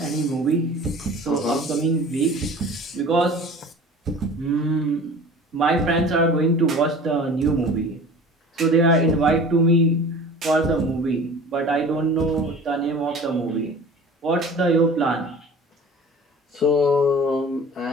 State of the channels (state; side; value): normal; both; correlation 0.42